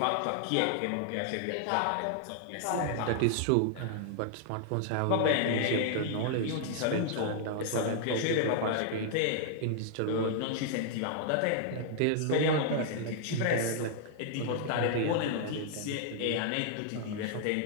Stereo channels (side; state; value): both; different; correlation -0.01